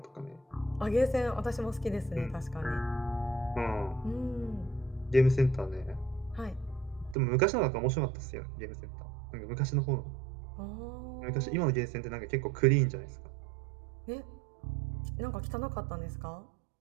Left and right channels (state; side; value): drops out; left; at 7.2 s